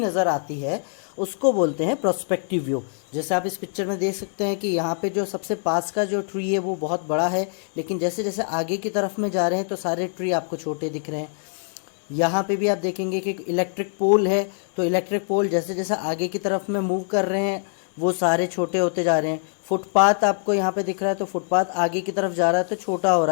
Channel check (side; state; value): right; silent; digital silence